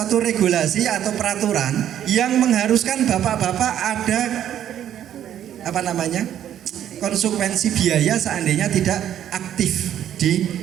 regulasi atau peraturan yang mengharuskan bapak-bapak ada konsekuensi biaya seandainya tidak aktif di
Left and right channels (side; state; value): left; quieter; 10.6 dB